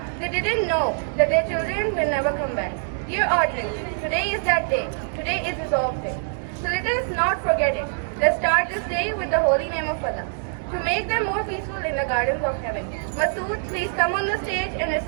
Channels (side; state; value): left; silent; digital silence